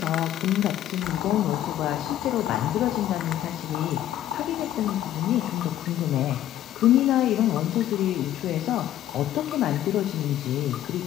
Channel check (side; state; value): right; quieter; 12.3 dB